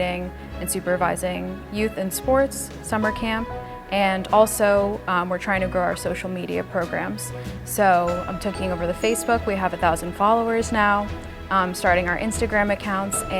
and supervising youth and sports, summer camp, and also we're trying to grow our social media programs. So I'm taking over the Facebook. We have 1,000 followers now. Starting our Instagram accounts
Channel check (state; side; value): identical; both; correlation 1.00